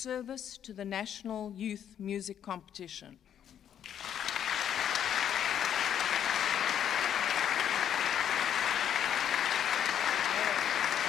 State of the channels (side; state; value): right; quieter; 9.5 dB